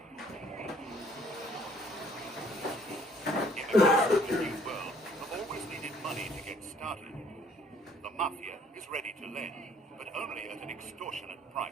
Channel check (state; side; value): normal; both; correlation 0.60